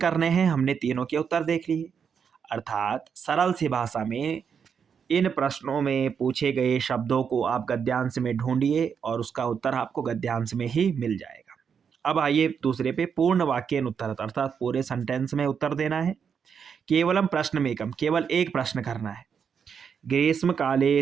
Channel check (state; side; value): quieter; left; 6.9 dB